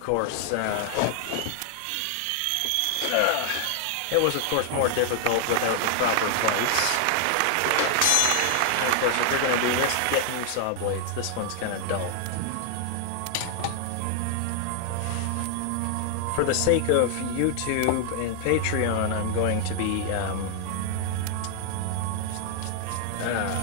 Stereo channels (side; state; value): both; different; correlation 0.00